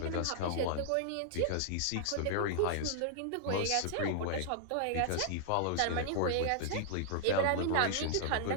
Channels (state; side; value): different; both; correlation -0.01